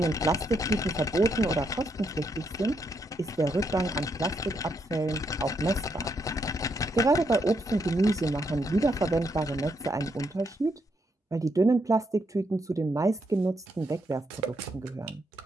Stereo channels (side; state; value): both; normal; correlation 0.78